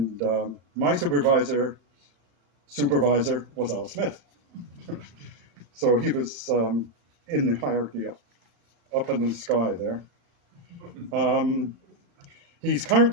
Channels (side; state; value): left; late; 35 ms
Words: my supervisor was Al Smith. So he was in the hierarchy up in the sky there. He's